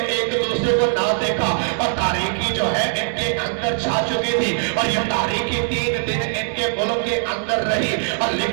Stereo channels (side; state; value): left; silent; digital silence